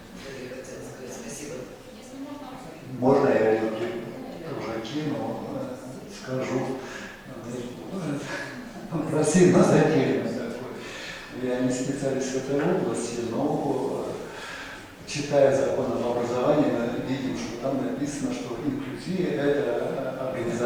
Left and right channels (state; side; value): identical; both; correlation 1.00